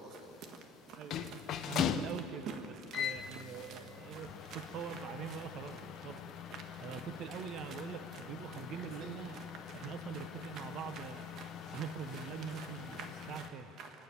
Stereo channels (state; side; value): normal; both; correlation 0.48